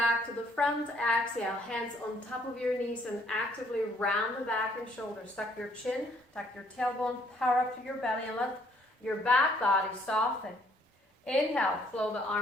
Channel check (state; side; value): normal; both; correlation 0.65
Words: to the front. Exhale, hands on top of your knees and actively round the back and shoulders. Tuck your chin, tuck your tailbone, power up to your belly and let your back body soften. Inhale, flow the